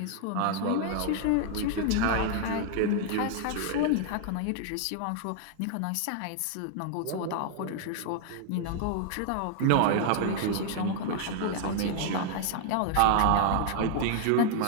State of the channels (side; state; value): both; different; correlation 0.00